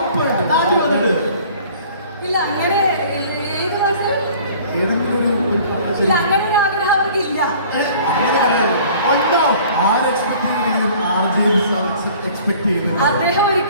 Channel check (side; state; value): both; inverted; correlation -0.50